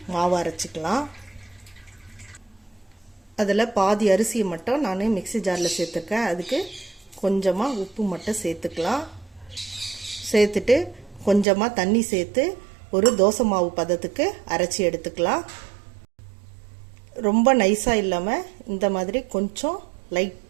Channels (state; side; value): drops out; left; at 11.5 s